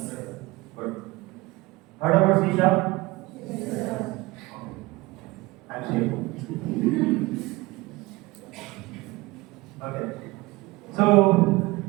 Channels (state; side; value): quieter; left; 21.7 dB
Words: Good. Heard about C#? I'm safe. Okay. So